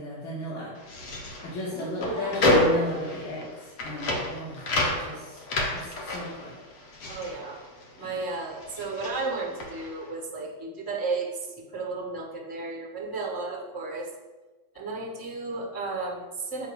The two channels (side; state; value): right; late; 8.0 ms